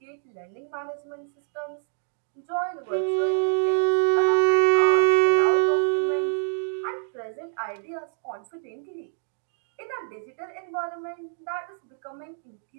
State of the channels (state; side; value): silent; left; 61 dB below the other